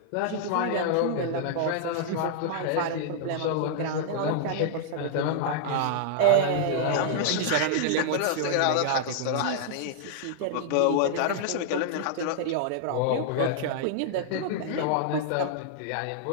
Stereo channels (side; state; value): both; different; correlation -0.01